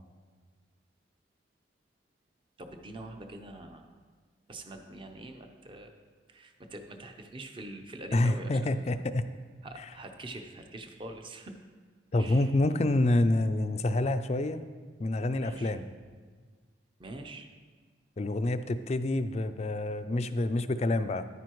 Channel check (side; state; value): both; normal; correlation 0.81